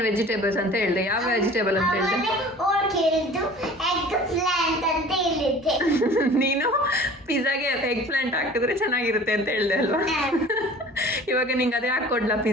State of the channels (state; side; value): normal; both; correlation 0.45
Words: vegetables ಅಂತ ಹೇಳಿದೆ. ಯಾವ ವೆಜಿಟೇಬಲ್ ಅಂತ ಹೇಳಿದೆ? ಹೇಳಿದ್ದು ಎಗ್ ಪ್ಲಾಂಟ್ ಅಂತ ಹೇಳಿದ್ದೆ. ನೀನು ಪಿಜ್ಜಾಗೆ ಎಗ್ ಪ್ಲಾಂಟ್ ಹಾಕಿದ್ರೆ ಚೆನ್ನಾಗಿರುತ್ತೆ ಅಂತ ಹೇಳಿದೆ ಅಲ್ವಾ? ಇವಾಗ ನಿಂಗೆ ಅದೇ ಹಾಕೊಡ್ಲಾ